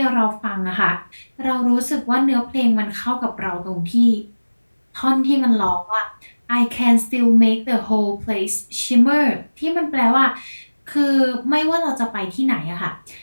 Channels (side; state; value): both; inverted; correlation -1.00